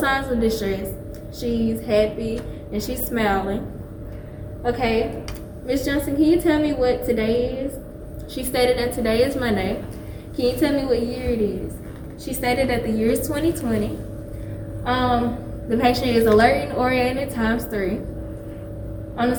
of distress. She's happy and she's smiling. Okay, Ms. Johnson, can you tell me what today is? She stated that today is Monday. Can you tell me what year it is? She stated that the year is 2020. The patient is alert and oriented ×3. On a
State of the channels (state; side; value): identical; both; correlation 1.00